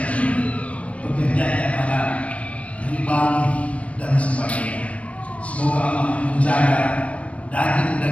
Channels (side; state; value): right; late; 0.064 ms